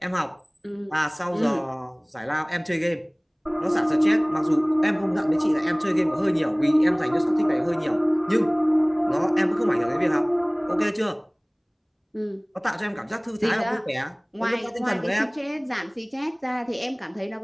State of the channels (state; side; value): identical; both; correlation 1.00